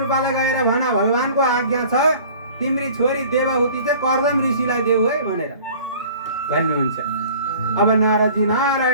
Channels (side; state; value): both; inverted; correlation -0.47